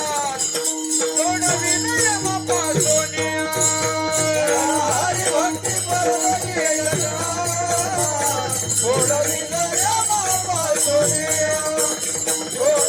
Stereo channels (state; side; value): identical; both; correlation 1.00